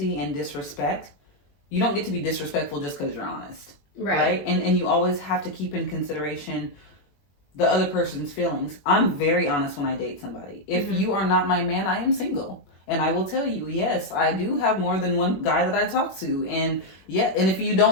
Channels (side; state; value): right; late; 21 ms